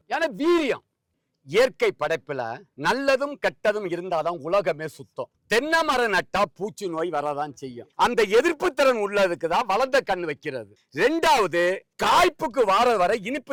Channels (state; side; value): identical; both; correlation 1.00